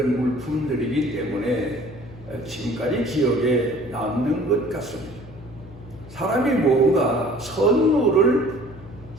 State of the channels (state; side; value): noise; left; hum, 18 dB below the sound